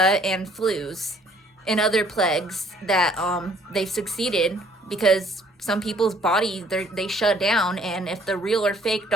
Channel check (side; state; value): both; normal; correlation 0.60